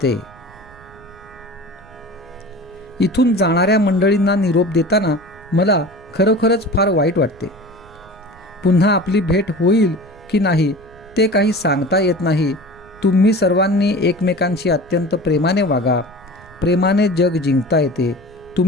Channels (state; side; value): noise; right; rumble, 24 dB below the sound